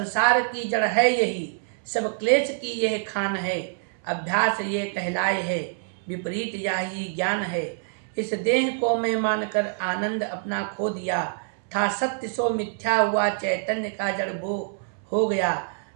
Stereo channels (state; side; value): silent; left; 61 dB below the other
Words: की जड़ है यही, सब क्लेश की यह खान है। अभ्यास ये कहलाए है, विपरीत यही ज्ञान है। इस देह को मैं मानकर आनंद अपना खो दिया, था सत्य सो मिथ्या हुआ, चैतन्य का जड़ वो हो गया।